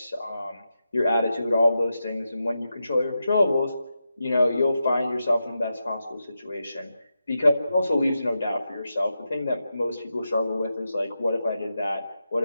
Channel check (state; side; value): inverted; both; correlation -0.88